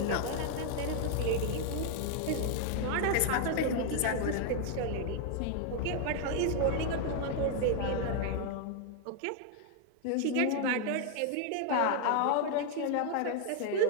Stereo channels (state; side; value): different; both; correlation 0.00